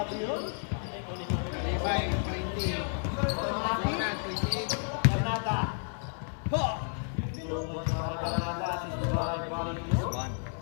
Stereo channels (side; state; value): right; silent; 57 dB below the other